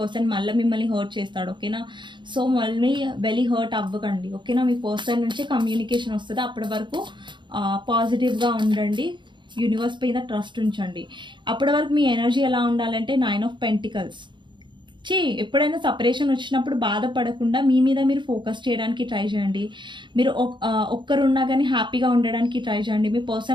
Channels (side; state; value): left; late; 0.23 ms